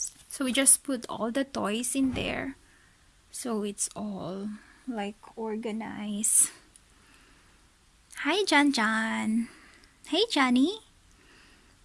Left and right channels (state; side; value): identical; both; correlation 1.00